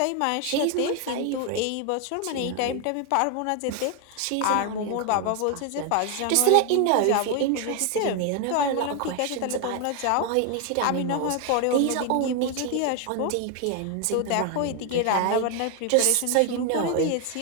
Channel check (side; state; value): both; different; correlation 0.01